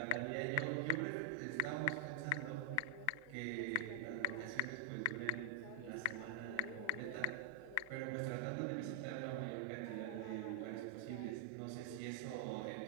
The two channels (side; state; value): both; different; correlation 0.00